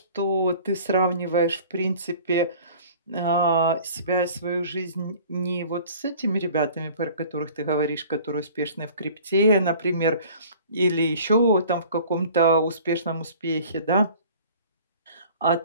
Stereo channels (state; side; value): inverted; both; correlation -0.47